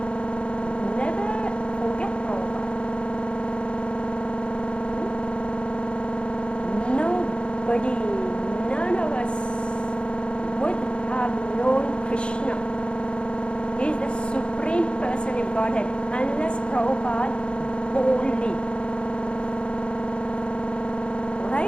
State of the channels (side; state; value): right; late; 0.056 ms